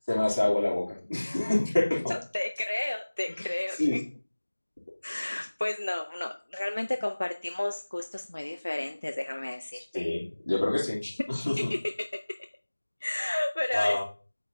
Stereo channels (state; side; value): inverted; both; correlation -1.00